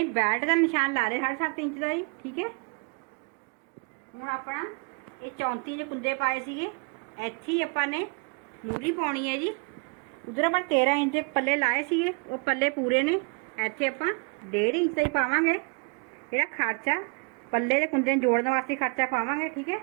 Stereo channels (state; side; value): quieter; left; 34.2 dB